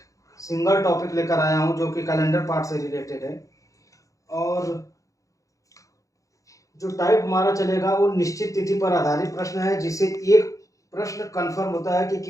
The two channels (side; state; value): right; late; 0.16 ms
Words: सिंगल टॉपिक लेकर आया हूं जो कि कैलेंडर पार्ट से रिलेटेड है। और जो टाइप हमारा चलेगा वो निश्चित तिथि पर आधारित प्रश्न है, जिससे एक प्रश्न कंफर्म होता है कि